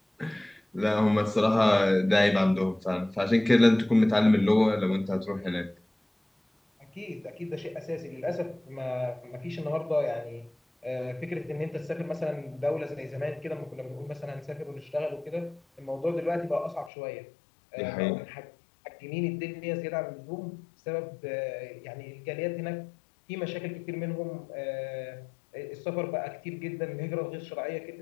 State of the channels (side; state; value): right; drops out; at 16.9 s